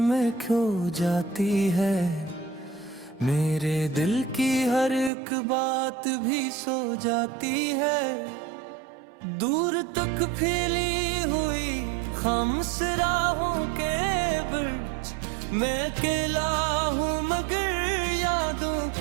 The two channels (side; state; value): left; drops out; at 5.1 s